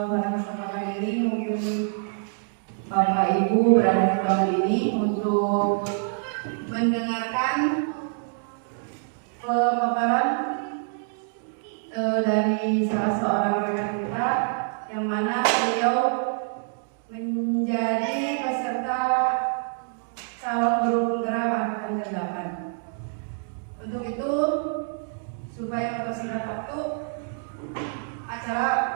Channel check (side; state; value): left; silent; 56 dB below the other